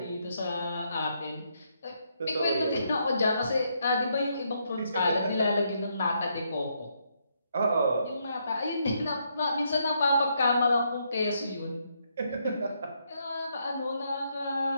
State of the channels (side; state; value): both; inverted; correlation -0.76